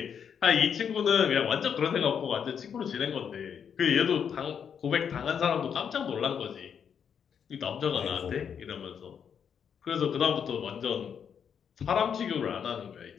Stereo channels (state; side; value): quieter; right; 7.6 dB